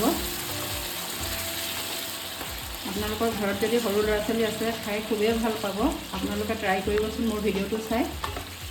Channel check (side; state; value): both; identical; correlation 1.00